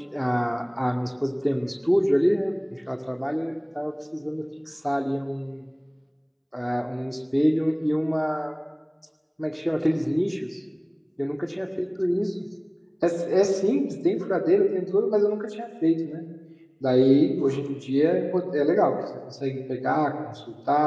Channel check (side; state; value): both; identical; correlation 1.00